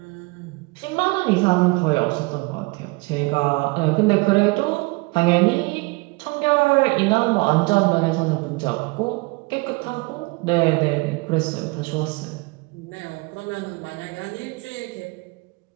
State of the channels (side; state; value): left; quieter; 26.2 dB